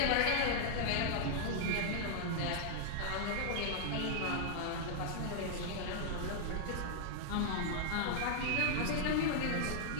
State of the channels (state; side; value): different; both; correlation -0.01